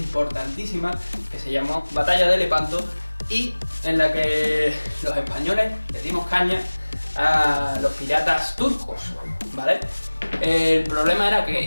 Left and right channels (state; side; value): inverted; both; correlation -1.00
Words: que se llamó Batalla de Lepanto y en la que los españoles le dimos caña a los piratas turcos, ¿vale? El problema era